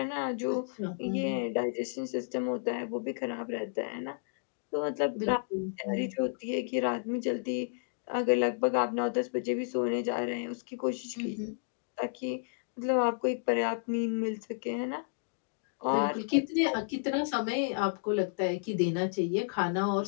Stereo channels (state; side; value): silent; right; digital silence